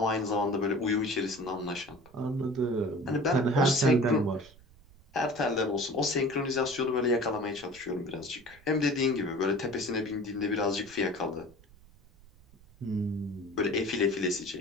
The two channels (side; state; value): right; noise; rumble, 25 dB below the sound